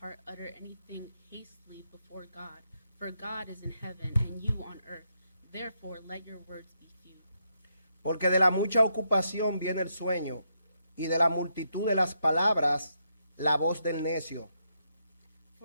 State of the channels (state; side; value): inverted; both; correlation -0.80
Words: heart utter anything hastily before God, for God is in heaven, and you on earth. Therefore let your words be few. Porque de la mucha ocupación viene el sueño, y de la multitud de las palabras la voz del necio.